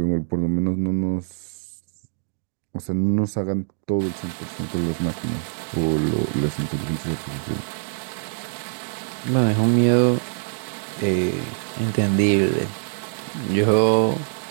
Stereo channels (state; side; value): silent; left; digital silence